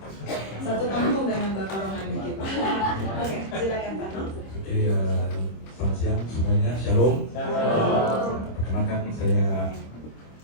Satu kampung dengan Bapak Rohani kita. Oke, silakan Pak. Oke, selamat siang semuanya, shalom. Perkenalkan saya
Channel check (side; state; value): right; late; 26 ms